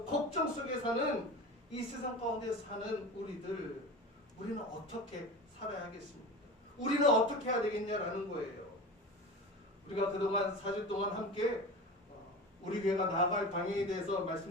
걱정 속에 사는 이 세상 가운데 사는 우리는 어떻게 살아야겠습니까? 우리는 어떻게 해야 되겠냐라는 거예요. 우리가 그동안 4주 동안 함께 우리 교회가 나아갈 방향에 대해서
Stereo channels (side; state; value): both; normal; correlation 0.31